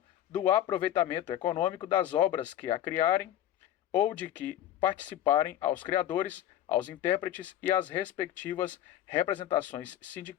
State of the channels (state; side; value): quieter; right; 11.7 dB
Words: do aproveitamento econômico das obras que a criarem ou de que participarem aos criadores, aos intérpretes e às respectivas representações